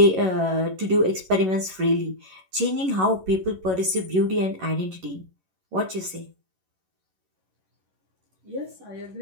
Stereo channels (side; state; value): left; late; 11 ms